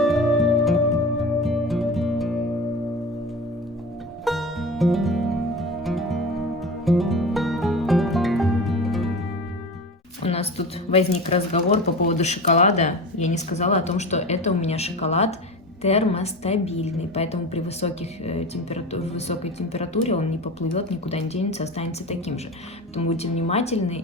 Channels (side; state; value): both; normal; correlation 0.30